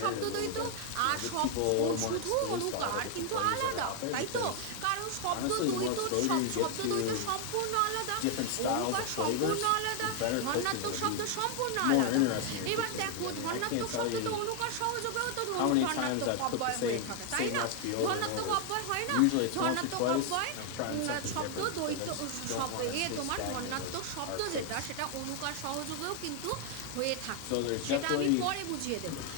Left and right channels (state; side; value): different; both; correlation 0.00